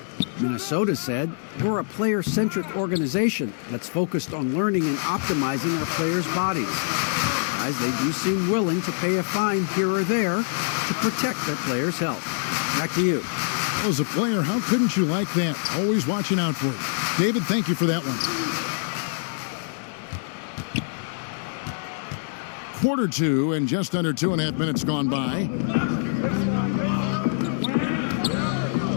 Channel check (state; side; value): silent; right; digital silence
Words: Minnesota said, we're a player-centric organization that's focused on learning and optimizing our players' bodies. Guys, they do seem willing to pay a fine here or there to protect their players' health. Back to you. As a player, how couldn't you like that? Always watching out for it. David, thank you for that one. Quarter 2 and just under 2.5 minutes gone by.